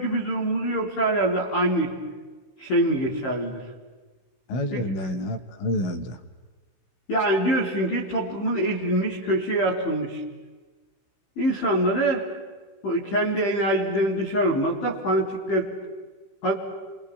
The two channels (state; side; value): late; right; 16 ms